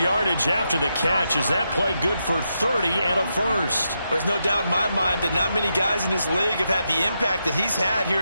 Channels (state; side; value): inverted; both; correlation -0.84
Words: after the catch. Is that play good for 30 and a first? There's no doubt in my mind that not many guys in this league have had the impact that he's had here